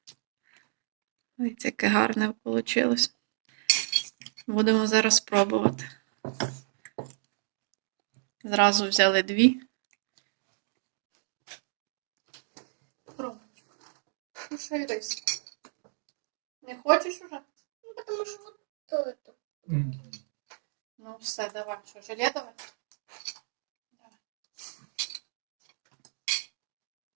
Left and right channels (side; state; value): left; silent; digital silence